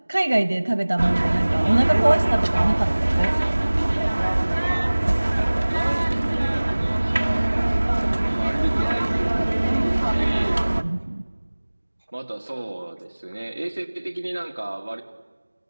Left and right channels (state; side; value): inverted; both; correlation -1.00